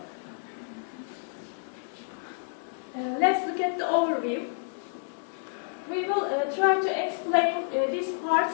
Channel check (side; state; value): right; silent; 58 dB below the other